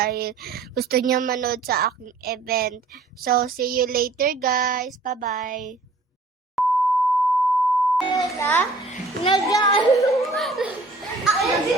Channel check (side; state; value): left; quieter; 3.3 dB